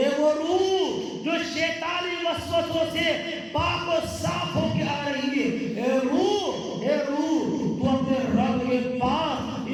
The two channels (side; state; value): both; identical; correlation 1.00